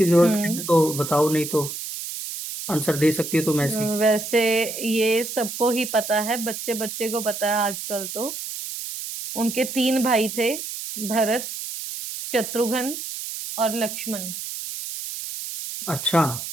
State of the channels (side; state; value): right; noise; hiss, 7 dB below the sound